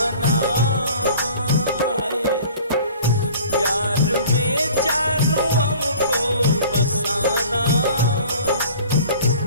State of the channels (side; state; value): both; inverted; correlation -0.47